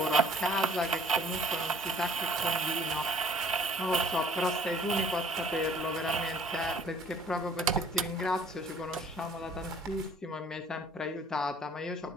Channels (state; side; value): normal; both; correlation 0.55